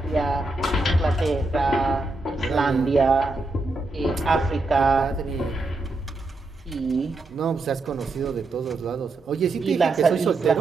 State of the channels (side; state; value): left; quieter; 3.2 dB